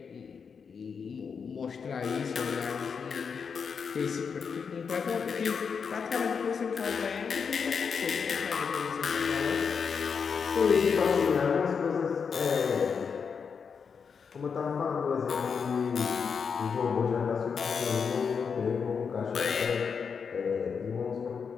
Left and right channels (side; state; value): right; quieter; 6.1 dB